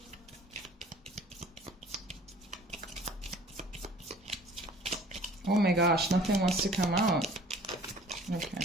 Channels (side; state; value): both; normal; correlation 0.50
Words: Oh my gosh, nothing wants to come out.